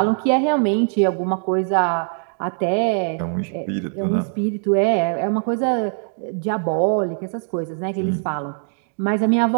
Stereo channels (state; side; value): silent; left; digital silence